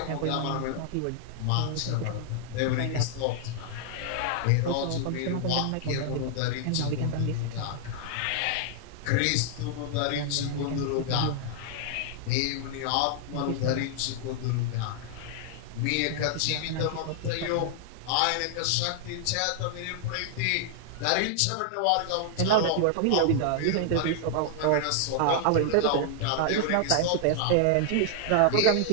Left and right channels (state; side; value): different; both; correlation -0.01